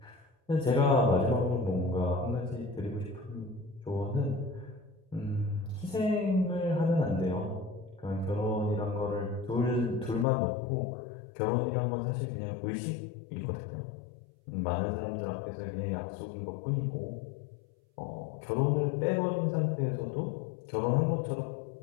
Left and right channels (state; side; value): drops out; right; at 10.2 s